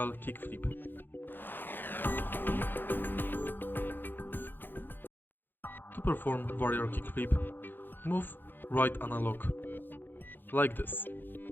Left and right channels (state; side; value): late; right; 0.095 ms